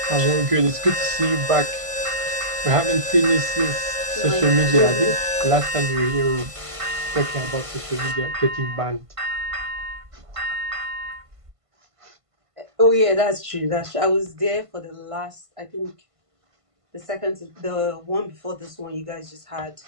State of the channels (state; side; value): late; left; 1.5 ms